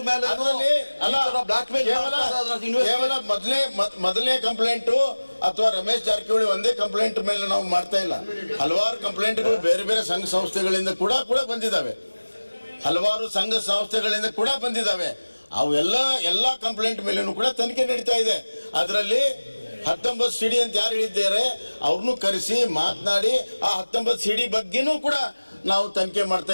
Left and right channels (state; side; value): inverted; both; correlation -1.00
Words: ಮೇಲೆ ಕೇವಲ ಮೊದಲನೇ ಕಂಪ್ಲೇಂಟು ಅಥವಾ ರಮೇಶ್ ಜಾರಕಿಹೊಳಿ ಒಂದೇ ಕಂಪ್ಲೇಂಟ್ ಮೇಲೆ ನಾವು ಮಾಡ್ತಾ ಇಲ್ಲ. ಹಲವಾರು ಕಂಪ್ಲೇಂಟ್ಗಳು ಬೇರೆ ಬೇರೆ ಸಂಘ ಸಂಸ್ಥೆಗಳಿಂದ ಕೂಡ ಬಂದಿದ್ದಾವೆ. ಅವೆಲ್ಲ ಕಂಪ್ಲೇಂಟ್ ಮೇಲೂ ಕೂಡ ತನಿಖೆ ನಡೀತಾ ಇದೆ. ಅದರಲ್ಲಿ 19 CD ಅಂತ ಯಾರು ಹೇಳಿದ್ದಾರೆ ಅವ್ರನ್ನೂ ಕರೆಸಿ ಮಾತನಾಡಿ ಆ 19 CD ಬಗ್ಗೆನೂ ಕೂಡ ನಾವು ತನಿಖೆ ಮಾಡ್ತಾ